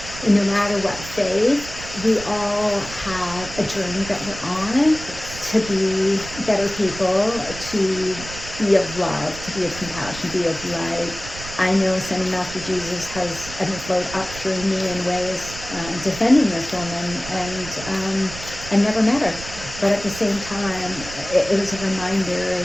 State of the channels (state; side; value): noise; right; rumble, 13 dB below the sound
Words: and no matter what faith, we all have a journey that we're on to be better people, to be of love, to be of compassion, be of light. I know Sending Master Jesus has flowed up through me in ways defending this woman, and never met her. But at the same time, it was a reminder